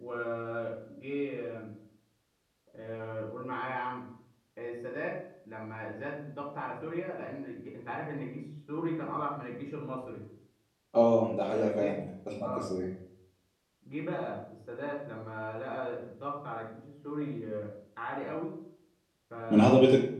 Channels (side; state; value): both; identical; correlation 1.00